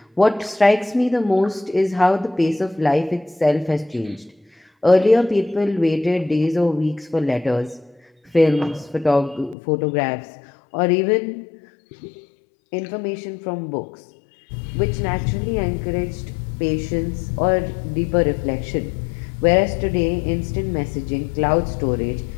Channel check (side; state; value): right; drops out; at 9.6 s